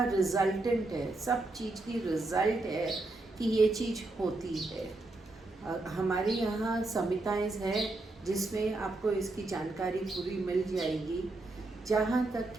रिजल्टेंट है, सब चीज़ की रिजल्ट है कि ये चीज़ होती है। हमारे यहाँ संहिताएं हैं जिसमें आपको इसकी जानकारी पूरी मिल जाएगी। जहाँ तक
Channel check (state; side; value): quieter; left; 3.0 dB